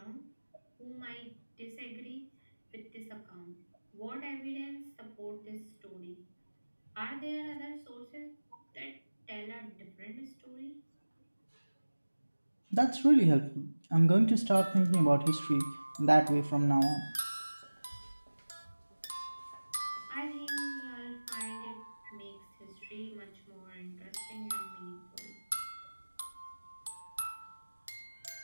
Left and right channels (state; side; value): inverted; both; correlation -1.00